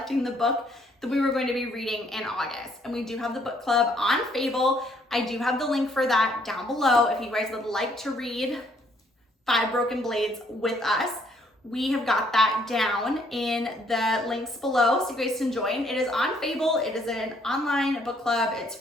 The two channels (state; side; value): normal; both; correlation 0.66